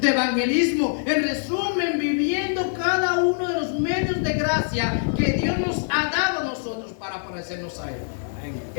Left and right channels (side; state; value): right; silent; 63 dB below the other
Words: evangelismo. En resumen, viviendo cada uno de los medios de gracia que Dios nos ha dado a nosotros para parecernos a Él.